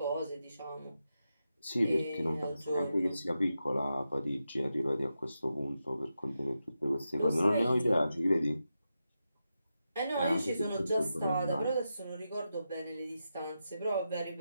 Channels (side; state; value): both; inverted; correlation -0.88